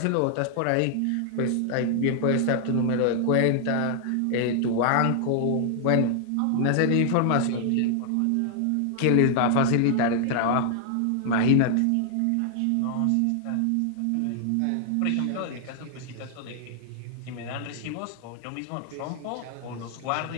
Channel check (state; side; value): different; both; correlation 0.00